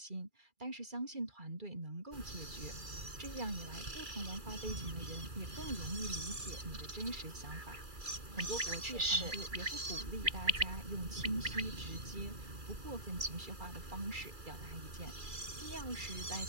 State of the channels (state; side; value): late; left; 2.3 ms